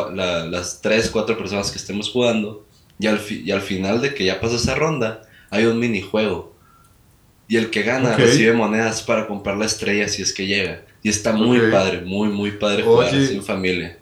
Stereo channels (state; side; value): identical; both; correlation 1.00